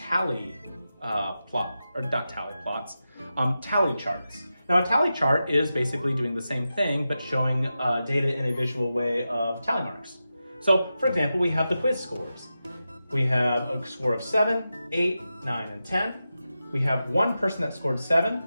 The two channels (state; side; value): inverted; both; correlation -0.91